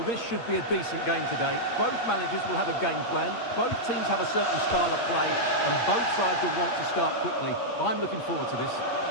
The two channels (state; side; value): late; right; 8.6 ms